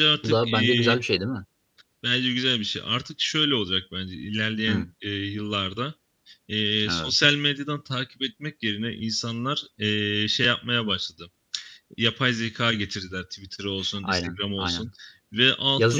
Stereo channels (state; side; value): identical; both; correlation 1.00